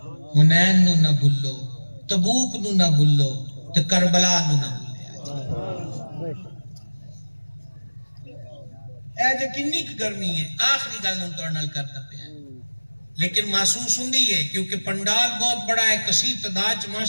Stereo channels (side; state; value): both; inverted; correlation -1.00